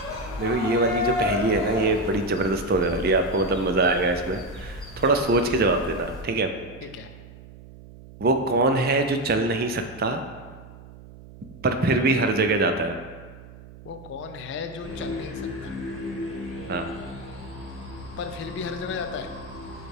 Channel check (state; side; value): noise; right; hum, 19 dB below the sound